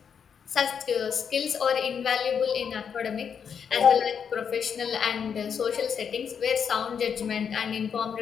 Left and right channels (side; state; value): right; quieter; 7.2 dB